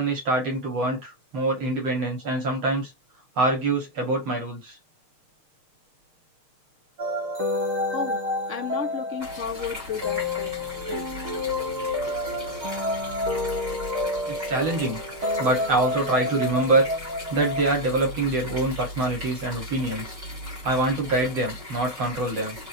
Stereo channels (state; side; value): late; left; 6.5 ms